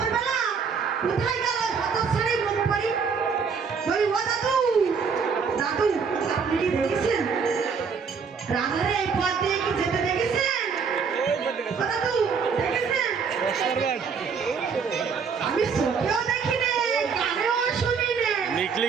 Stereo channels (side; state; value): left; quieter; 5.9 dB